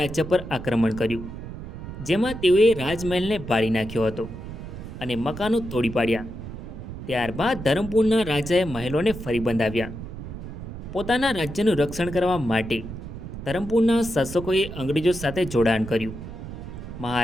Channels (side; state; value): right; noise; rumble, 10 dB below the sound